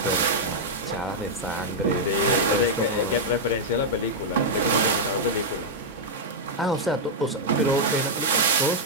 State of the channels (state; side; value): normal; both; correlation -0.04